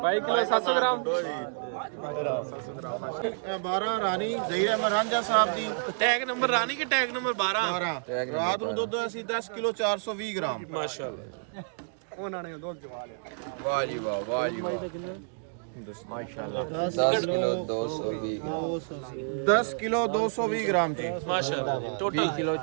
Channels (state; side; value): silent; left; digital silence